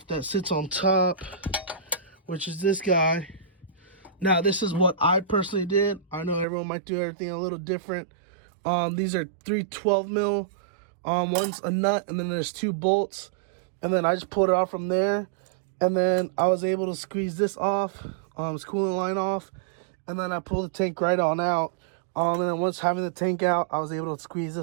that sits on top, which is this guy. Now, this is what I personally did. I know everyone might do everything a little different. These are 3 12 mil. One's a nut, and then there's 2 bolts. And then I just pulled it off from there. And then I was able to squeeze this off, this coolant line off. And then I pulled the tank right on out. And then once having the tank out, I was able to squeeze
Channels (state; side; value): drops out; left; at 6.5 s